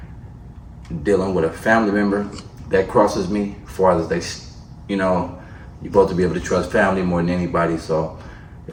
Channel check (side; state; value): both; identical; correlation 1.00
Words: dealing with a family member that crosses me, as far as you know, you're supposed to be able to trust family more than anybody. So